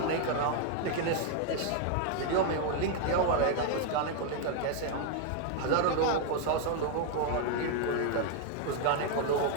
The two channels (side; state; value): both; different; correlation 0.00